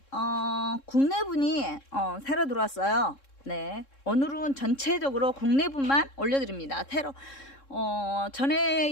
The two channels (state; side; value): late; right; 3.7 ms